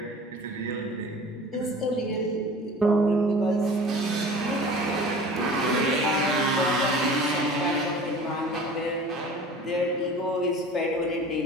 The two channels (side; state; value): both; normal; correlation 0.42